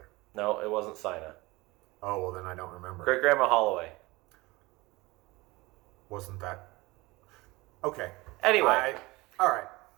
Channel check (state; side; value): quieter; left; 22.0 dB